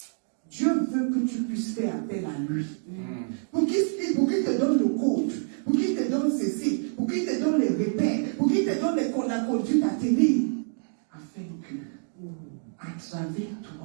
Dieu veut que tu puisses faire appel à lui. Pour qu'il te donne le code, pour qu'il te donne ceci, pour qu'il te donne les repères, pour qu'il te donne la conduite à tenir, afin que, à travers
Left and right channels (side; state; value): left; silent; digital silence